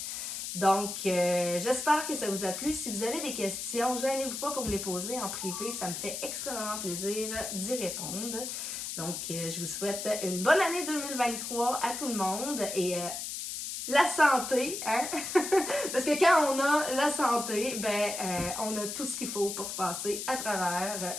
Donc, j'espère que ça vous a plu. Si vous avez des questions, gênez-vous pas pour me les poser en privé. Ça me fait extrêmement plaisir d'y répondre. Donc, je vous souhaite une bonne année 2023 à tout le monde et la santé, hein? Parce que quand on a la santé, on a tout ce qu'il faut pour passer à travers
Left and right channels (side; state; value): left; noise; hiss, 5 dB below the sound